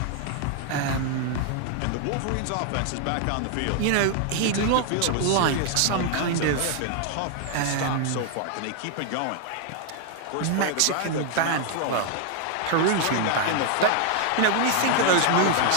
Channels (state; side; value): different; both; correlation 0.00